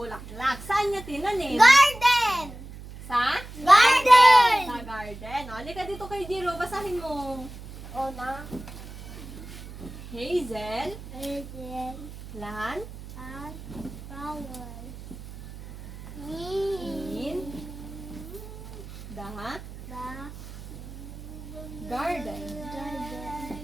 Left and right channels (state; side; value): noise; right; hum, 14 dB below the sound